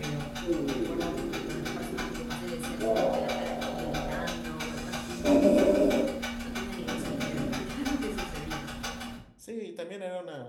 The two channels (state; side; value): identical; both; correlation 1.00